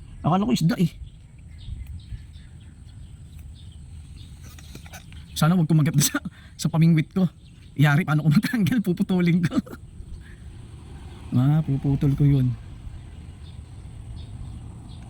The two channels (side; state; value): both; identical; correlation 1.00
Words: Akala ko isda eh. Sana wag kumagat sa pamingwit ko. Iyari, paano ko matanggal, puputulin ko. Mapuputol ko yun.